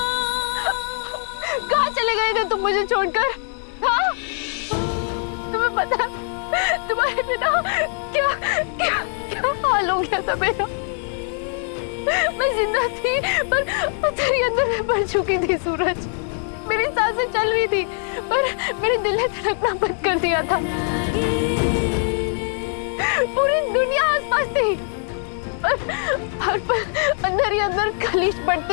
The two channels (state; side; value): silent; right; 58 dB below the other